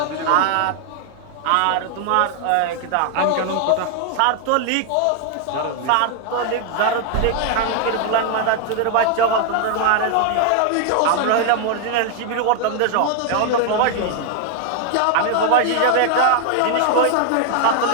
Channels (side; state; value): both; different; correlation 0.00